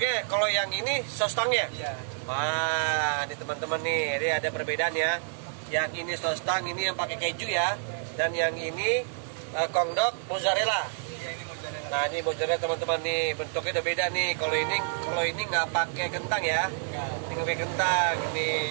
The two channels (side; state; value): left; silent; digital silence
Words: Kalau yang ini sostangnya. Iya. Wah, ini teman-teman nih, ini ada perbedaan ya. Yang ini sostang, ini yang pakai keju ya. Dan yang ini kongdok mozzarella. Iya, ini mozzarella. Nah, ini mozzarella teman-teman nih, bentuknya udah beda nih. Kalau ini nggak pakai kentang ya. Enggak. Ini nggak pakai kentang. Ini,